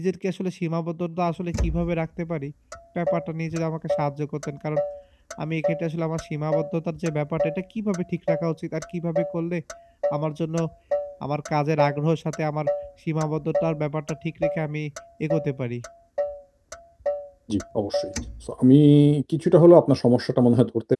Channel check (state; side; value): identical; both; correlation 1.00